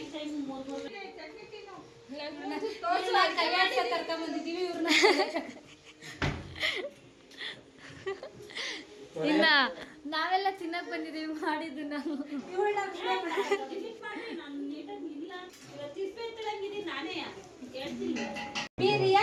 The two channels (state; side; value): identical; both; correlation 1.00